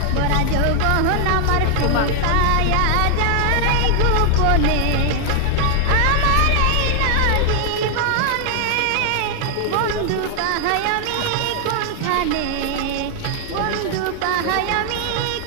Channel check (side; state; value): both; different; correlation 0.00